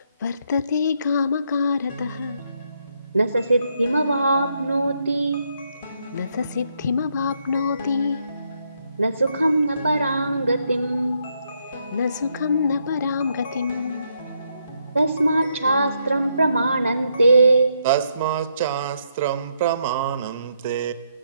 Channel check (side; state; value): both; inverted; correlation -0.76